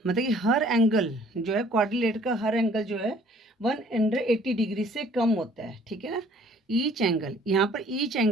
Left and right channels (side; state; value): both; normal; correlation 0.57